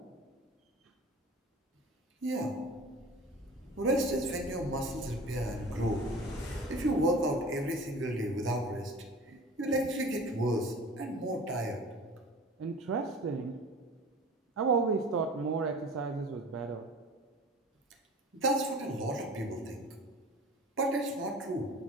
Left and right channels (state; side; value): normal; both; correlation 0.41